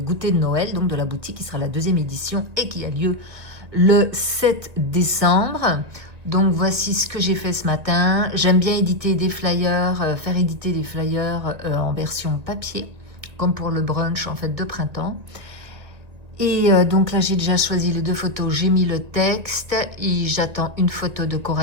de Noël, donc de la boutique qui sera la 2e édition et qui a lieu le 7 décembre. Donc voici ce que j'ai fait ce matin. J'aime bien éditer des flyers, faire éditer des flyers en version papier, comme pour le brunch en fait de printemps. Et donc là, j'ai déjà choisi les 2 photos, j'ai mis le texte et j'attends une photo de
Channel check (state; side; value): late; left; 1.9 ms